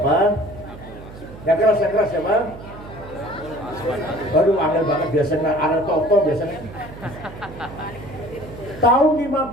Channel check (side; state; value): right; noise; hum, 15 dB below the sound